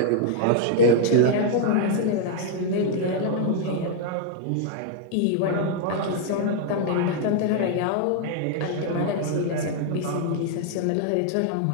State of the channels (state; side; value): different; both; correlation 0.00